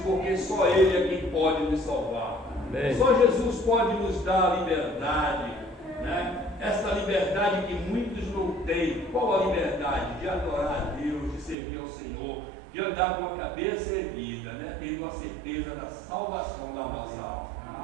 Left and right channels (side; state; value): left; drops out; at 11.6 s